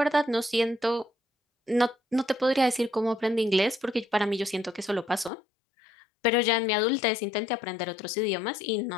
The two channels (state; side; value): drops out; right; at 5.3 s